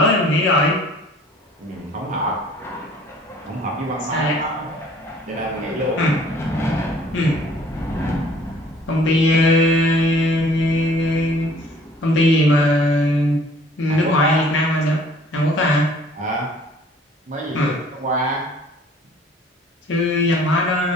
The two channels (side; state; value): both; normal; correlation 0.54